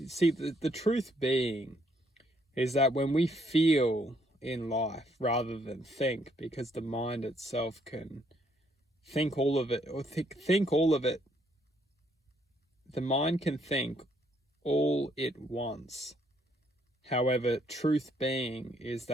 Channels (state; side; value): normal; both; correlation 0.70